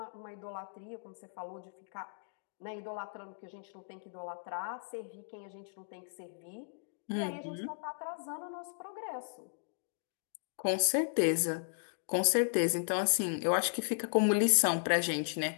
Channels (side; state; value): right; silent; digital silence